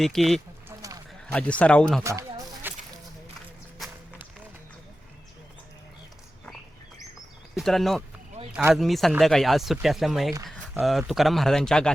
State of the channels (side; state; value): both; normal; correlation 0.94